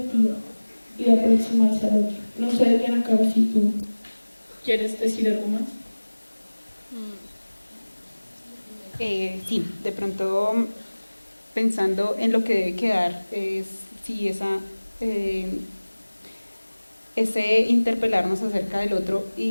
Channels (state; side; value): inverted; both; correlation -1.00